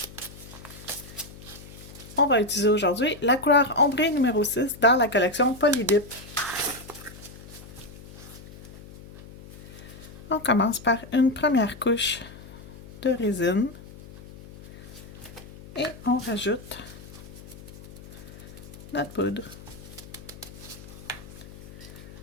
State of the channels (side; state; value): left; noise; hum, 17 dB below the sound